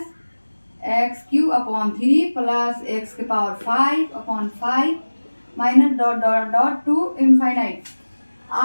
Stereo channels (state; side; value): inverted; both; correlation -1.00